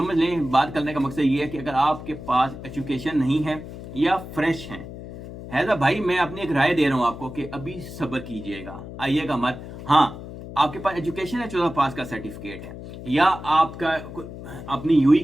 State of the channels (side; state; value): left; noise; hum, 12 dB below the sound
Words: लें, बात करने का मकसद ये है कि अगर आपके पास एजुकेशन नहीं है या फ्रेश है तो भाई मैं अपनी एक राय दे रहा हूं आपको कि अभी सब्र कीजिएगा, आइएगा मत। हाँ, आपके पास एजुकेशन है, 14 पास का सर्टिफिकेट है, या आपका अपनी यूई